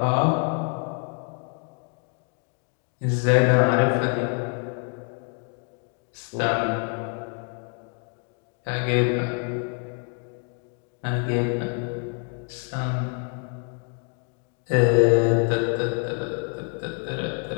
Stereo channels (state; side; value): quieter; right; 40.0 dB